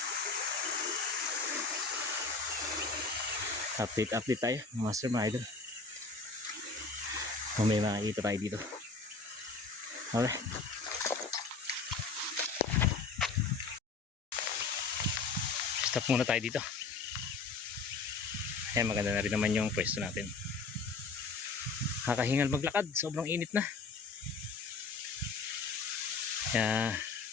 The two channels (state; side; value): quieter; right; 4.3 dB